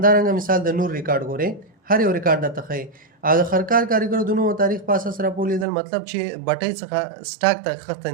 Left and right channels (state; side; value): drops out; left; at 5.7 s